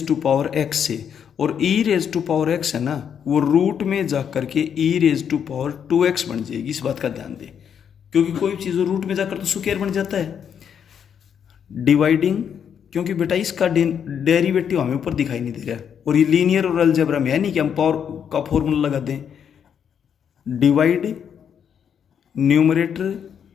से, और e⁻x है ना, वो रूट में जा करके e⁻2x बन जाएगी। इस बात का ध्यान दें, क्योंकि कोई चीज़ रूट में जाकर तो स्क्वायर बन जाता है। डिवाइडिंग, क्योंकि बेटा इसका डेरिवेटिव हमें ऊपर दिखाई नहीं दे रहा है, और ये लीनियर और अलजेब्रा में है नहीं कि हम पावर का फॉर्मूला लगा दें। Divide numerator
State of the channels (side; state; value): right; quieter; 8.0 dB